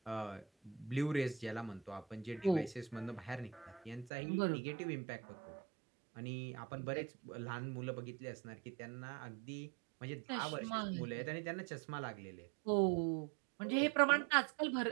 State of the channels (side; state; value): left; drops out; at 4.1 s